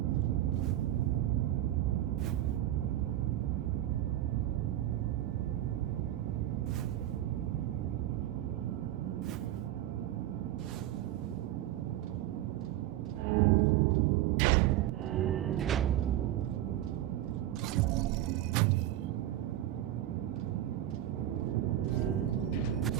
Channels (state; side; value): quieter; left; 13.3 dB